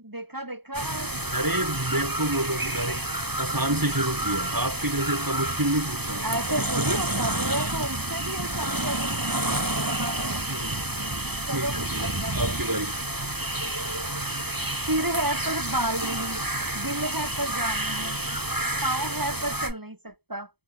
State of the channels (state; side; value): late; left; 0.97 ms